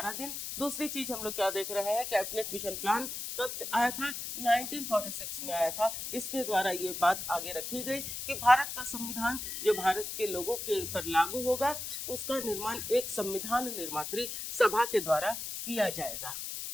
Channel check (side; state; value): left; noise; hiss, 6 dB below the sound